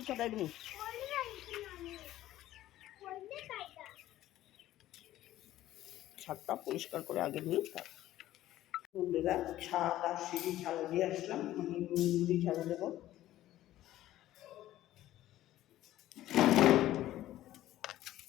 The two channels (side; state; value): right; quieter; 14.2 dB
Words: ছটাই দিন। ছাদটা পরিষ্কার করে আগে নিই। বন্ধুরা, ছাদ আর সিঁড়ি ঝাড়ু দিয়ে আসলাম, আমি মুড়ি ঝাড়ু দেবো।